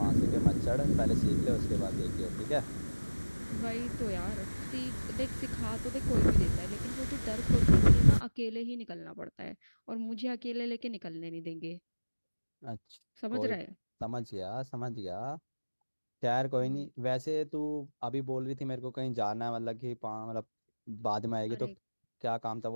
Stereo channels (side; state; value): both; inverted; correlation -1.00